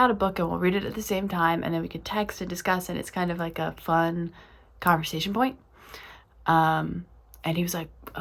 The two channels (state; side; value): identical; both; correlation 1.00